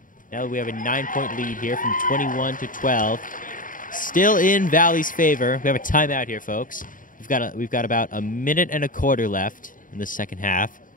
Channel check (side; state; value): right; late; 0.39 ms